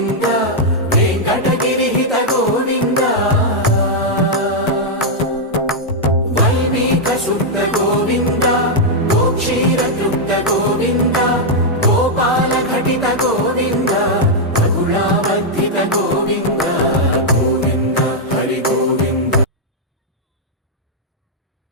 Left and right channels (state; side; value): normal; both; correlation -0.03